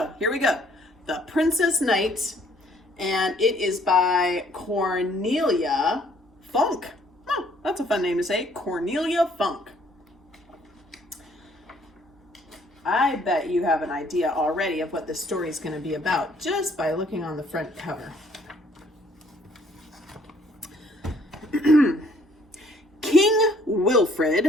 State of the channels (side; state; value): both; normal; correlation 0.62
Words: here we go. The Princess Knight, and it is by Cornelia Funk. Oh, that's a fun name to say. Cornelia Funk. I bet you have an idea already of what this story is going to be about just by looking on the front cover. King